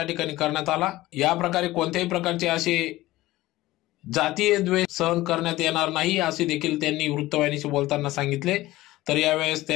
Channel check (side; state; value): right; quieter; 17.4 dB